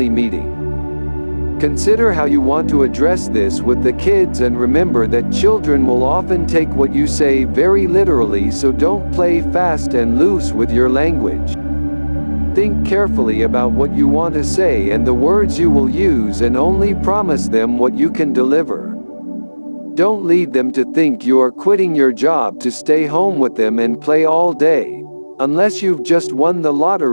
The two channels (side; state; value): both; inverted; correlation -1.00